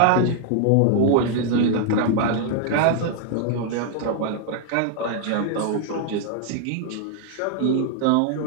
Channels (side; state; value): both; different; correlation 0.00